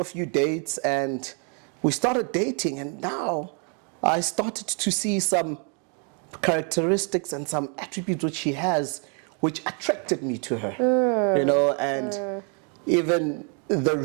a few dates and we started dating, and now I started to see some characteristics and some attributes which she has which attracted me to her. You know, and even the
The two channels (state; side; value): quieter; left; 38.9 dB